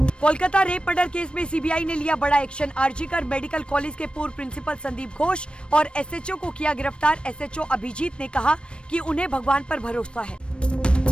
कोलकाता रेप मर्डर केस में सीबीआई ने लिया बड़ा एक्शन। आरजीकर मेडिकल कॉलेज के पूर्व प्रिंसिपल संदीप घोष और एसएचओ को किया गिरफ्तार। एसएचओ अभिजीत ने कहा कि उन्हें भगवान पर भरोसा है।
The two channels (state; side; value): late; right; 0.057 ms